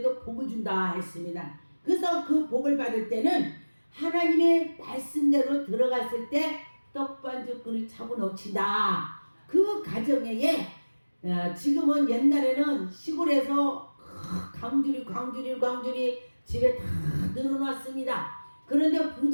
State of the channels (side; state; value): both; inverted; correlation -1.00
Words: 복을 준다 했습니다. 그래서 그 복을 받을 때는 하나님의 말씀대로 들어갔을 때 떡반죽 그릇 차고 넘친다. 그 가정에 지금은 옛날에는 시골에서 광주리 집에 다 늘어놨습니다. 그런데